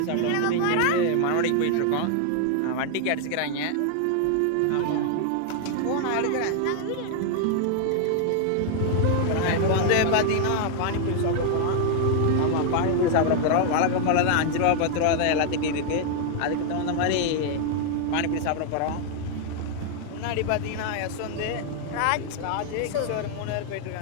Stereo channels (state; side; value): different; both; correlation 0.00